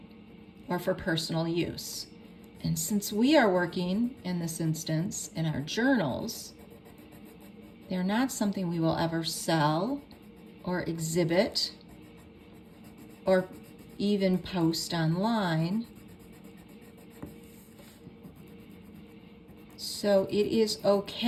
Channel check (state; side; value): identical; both; correlation 1.00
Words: or for personal use. And since we are working in this instance in our journals, they're not something we will ever sell or exhibit or even post online. So it is